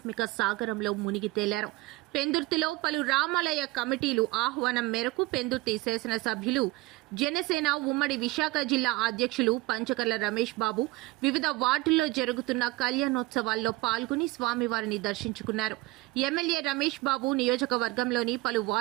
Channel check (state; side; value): quieter; left; 20.3 dB